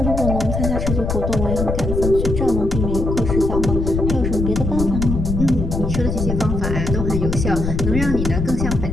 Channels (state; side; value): noise; left; rumble, 2 dB below the sound